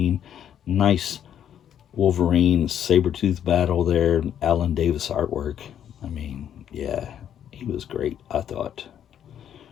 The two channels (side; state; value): right; quieter; 9.6 dB